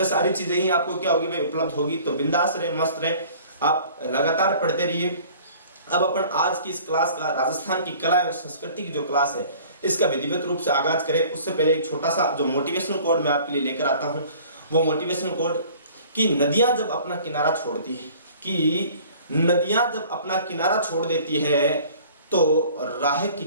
सारी चीजें ही आपको क्या होगी भाई उपलब्ध होगी। तो बिंदास रहे, मस्त रहे, आप लगातार पढ़ते रहिए। अब अपन आज की इस क्लास का राजस्थान की कला एवं संस्कृति की जो क्लास है इसका विधिवत रूप से आगाज करें। उससे पहले एक छोटा सा जो मोटिवेशनल कोड मैं आपके लिए लेकर आता हूं, वो मोटिवेशनल कोड कि नदियां जब अपना किनारा छोड़ती है, कि नदियां जब अपना किनारा छोड़ देती है तो राह की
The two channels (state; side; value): inverted; both; correlation -0.50